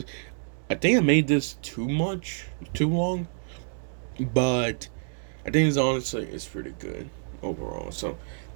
I think I made this too long, but I think it's pretty good overall. So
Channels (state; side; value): silent; left; 60 dB below the other